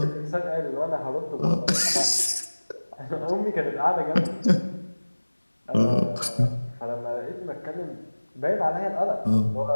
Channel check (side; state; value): both; inverted; correlation -1.00